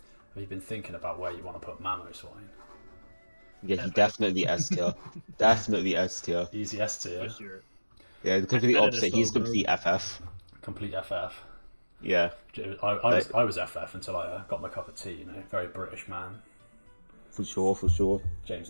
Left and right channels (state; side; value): inverted; both; correlation -1.00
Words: have you been thinking about where you want to put Mamoswine? Yeah, he definitely S tier. Definitely S tier. Easy S tier. For sure. Yeah, the complete Better opposite. than He's Slowbro. complete FF. Complete FF. Yeah, I was FF until I got my cup of tea, you know, very British man. for sure, for sure. James,